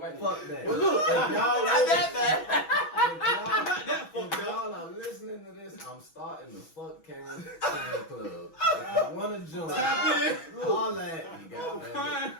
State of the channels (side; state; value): right; late; 6.1 ms